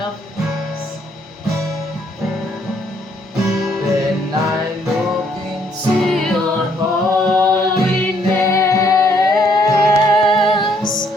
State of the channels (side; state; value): both; normal; correlation 0.68